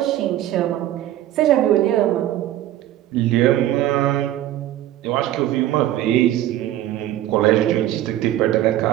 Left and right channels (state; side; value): quieter; left; 13.3 dB